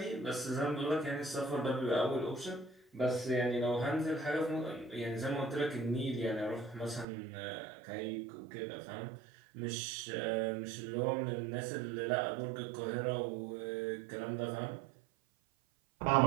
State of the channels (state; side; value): drops out; left; at 7.1 s